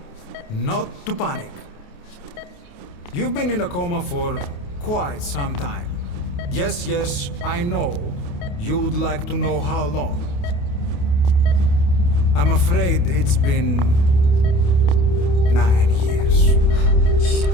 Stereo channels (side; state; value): right; late; 28 ms